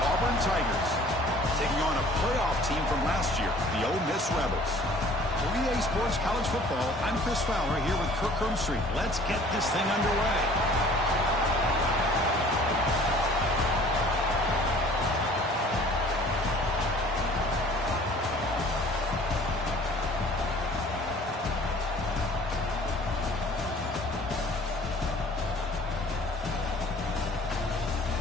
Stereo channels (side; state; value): both; normal; correlation 0.51